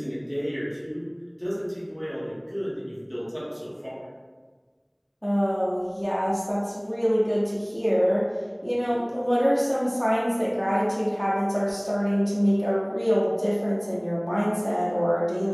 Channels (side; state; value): both; identical; correlation 1.00